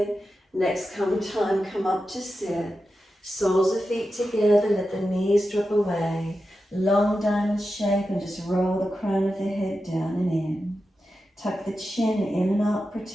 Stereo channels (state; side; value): normal; both; correlation 0.91